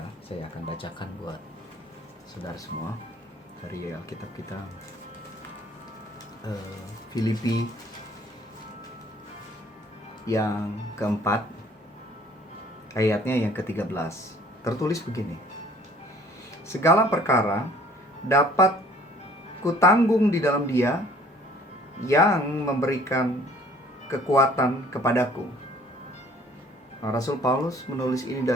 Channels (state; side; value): normal; both; correlation 0.55